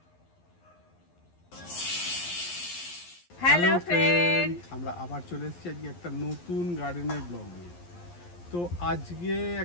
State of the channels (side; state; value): right; late; 11 ms